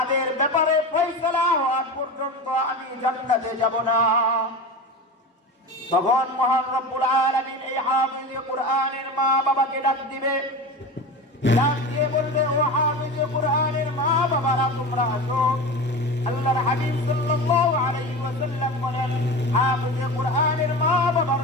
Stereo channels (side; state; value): both; normal; correlation 0.28